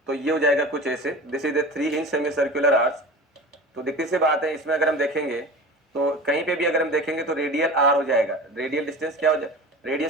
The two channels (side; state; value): both; normal; correlation 0.35